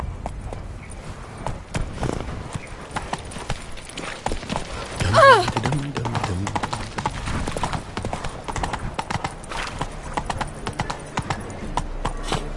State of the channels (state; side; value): identical; both; correlation 1.00